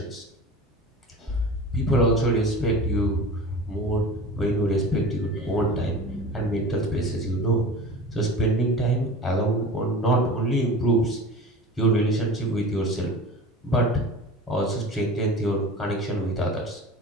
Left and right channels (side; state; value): both; normal; correlation 0.36